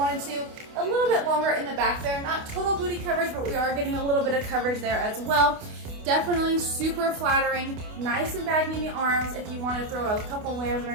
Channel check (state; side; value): late; left; 28 ms